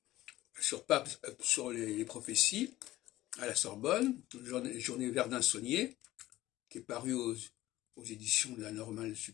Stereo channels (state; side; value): quieter; right; 16.1 dB